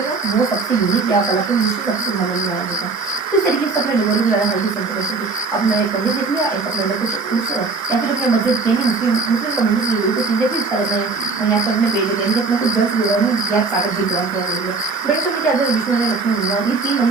है वो सबसे यूनिक या कलात्मक दृष्टि सबसे सुंदर मंदिर माना जाता है। तो इस तरीके से अपने डोंगरी के बारे में हल्की सी इन्फॉर्मेशन थी। अपना एक मंदिर देख लिया, एक अपने कुछ उस या फिर अपने मस्जिद मुस्लिम कम्युनिटी से जुड़ी कुछ चीजें थी, इस तरह यहाँ पे अपने पेज दिया अपने कुछ जल से जुड़ा नहीं गैप सागर जी द्वारा थोड़ा दे दिया। ब्रिटिश में क्या था, विष्णु मंदिर लक्ष्मी मंदिर, ये 3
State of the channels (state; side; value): quieter; left; 4.2 dB